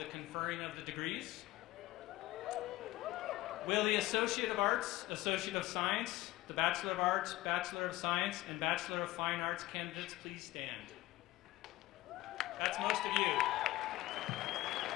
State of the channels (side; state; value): right; quieter; 17.5 dB